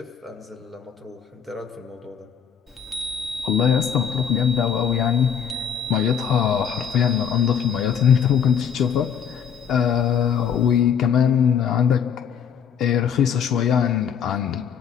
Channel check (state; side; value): quieter; right; 7.7 dB